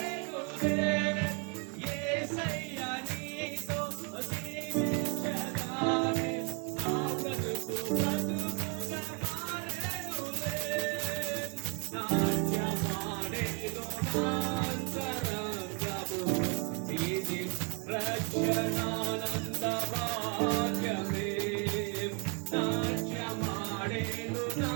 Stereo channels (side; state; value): left; quieter; 34.0 dB